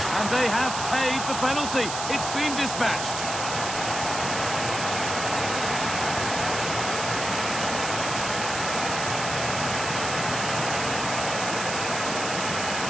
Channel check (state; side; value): noise; right; hiss, 5 dB below the sound